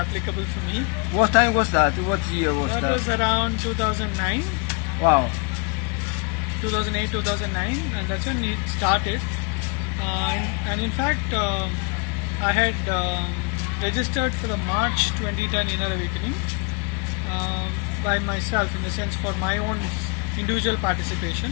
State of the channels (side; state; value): right; quieter; 32.6 dB